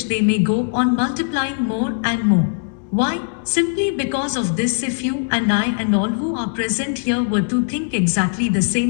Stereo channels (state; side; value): silent; right; digital silence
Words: they may go on multiplying more and more. Why? Simply because of this: if you and I and all who are present here were to think exactly the